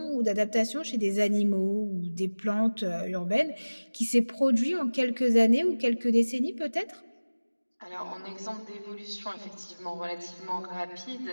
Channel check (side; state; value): both; inverted; correlation -1.00